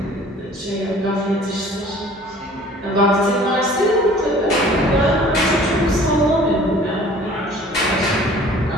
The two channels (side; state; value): both; normal; correlation 0.50